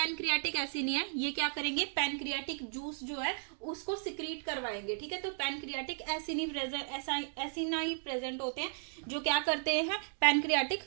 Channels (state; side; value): silent; left; digital silence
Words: एसिनी है ये क्या करेंगे, पैनक्रियाटिक जूस जो है उसको सिक्रीट करवाएंगे, ठीक है। तो पैनक्रियाटिक एसिनाई प्रेजेंट होते हैं जो क्या करते हैं, पैनक्रियाटिक